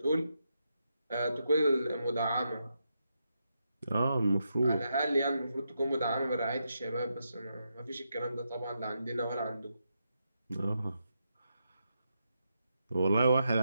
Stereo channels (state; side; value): inverted; both; correlation -0.84